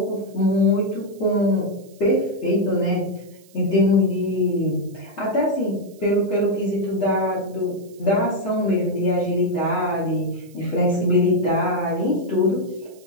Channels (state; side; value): noise; right; hiss, 28 dB below the sound